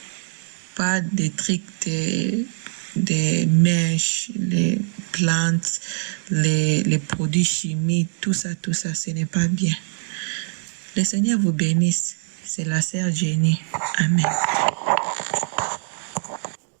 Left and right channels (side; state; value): left; silent; 63 dB below the other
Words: Pas des trucs des mèches, les plantes, les produits chimiques, tout ça, ce n'est pas bien. Le Seigneur vous bénisse. C'est la sœur Jenny. Amen.